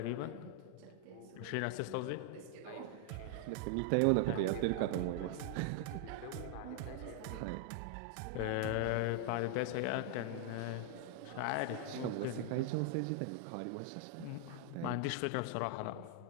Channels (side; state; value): both; different; correlation 0.00